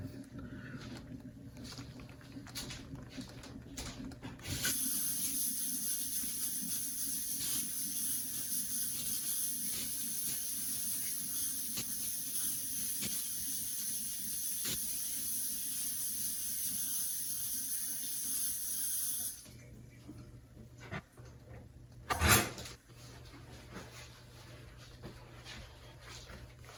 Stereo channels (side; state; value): both; identical; correlation 1.00